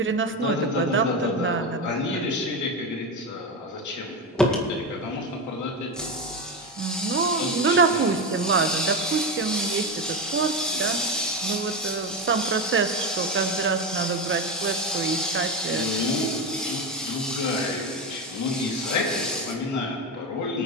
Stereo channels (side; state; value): both; normal; correlation 0.16